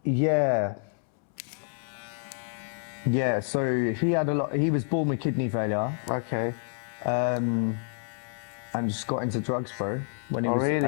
Yeah, so he was born with kidney failure. Okay. And just got into drugs, bro. When he was,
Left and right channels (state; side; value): silent; right; 59 dB below the other